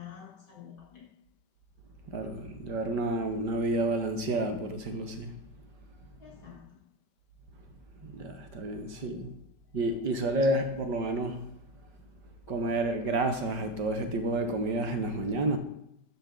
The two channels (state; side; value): late; right; 5.1 ms